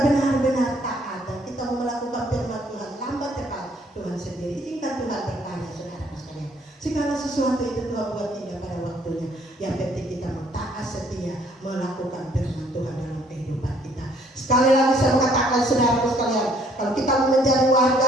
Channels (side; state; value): both; normal; correlation 0.63